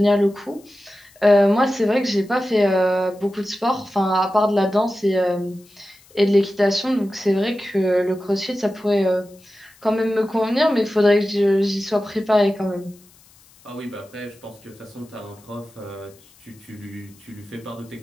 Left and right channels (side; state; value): left; noise; hiss, 28 dB below the sound